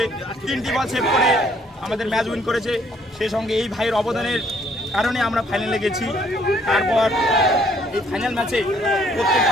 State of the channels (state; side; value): normal; both; correlation 0.64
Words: 3টি বল সেভ করে আমাদের ম্যাচ উইন করেছে। সেই সঙ্গে এই ভাইয়ের অবদানের কারণে আমরা ফাইনালে গেছি। তারপর এই ফাইনাল ম্যাচে প্রত্যেকটা